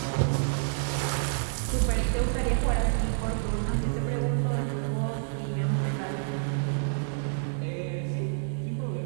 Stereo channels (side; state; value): left; silent; digital silence